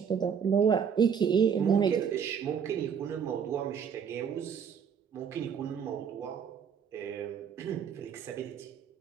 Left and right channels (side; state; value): left; quieter; 7.3 dB